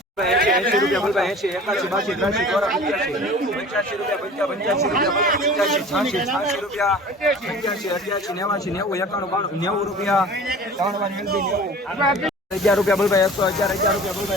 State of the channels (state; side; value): normal; both; correlation 0.43